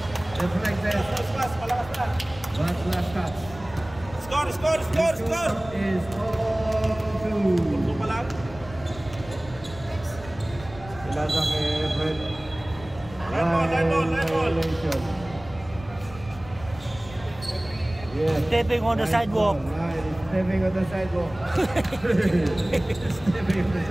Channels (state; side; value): noise; left; rumble, 17 dB below the sound